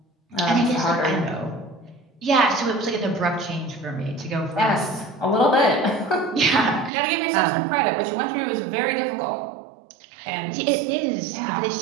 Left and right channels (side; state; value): left; drops out; at 6.9 s